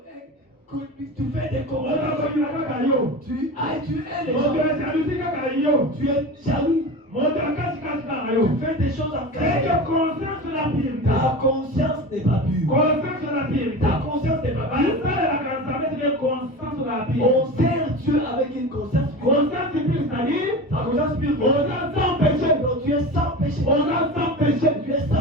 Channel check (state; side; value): normal; both; correlation 0.30